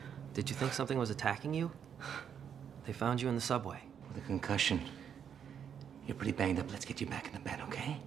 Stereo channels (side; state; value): left; quieter; 8.1 dB